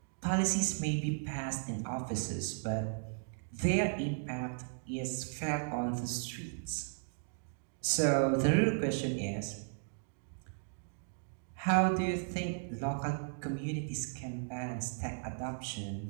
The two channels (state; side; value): silent; left; digital silence